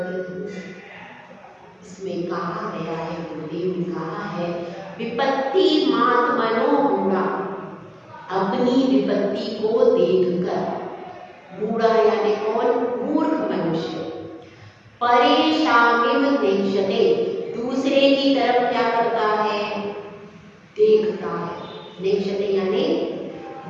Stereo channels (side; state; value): both; identical; correlation 1.00